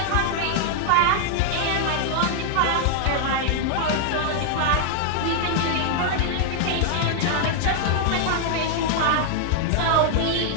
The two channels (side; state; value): both; different; correlation 0.00